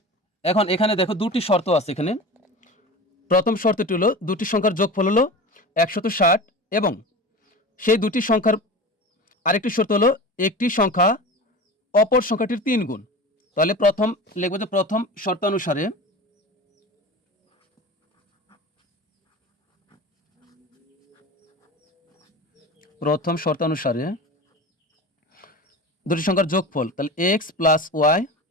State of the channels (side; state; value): both; normal; correlation 0.32